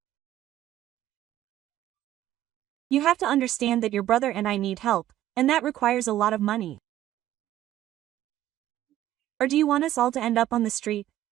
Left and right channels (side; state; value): left; quieter; 13.4 dB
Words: You have to understand that your brother and I need help, and that requires a lot of money. Or do you want us all to end up on the street?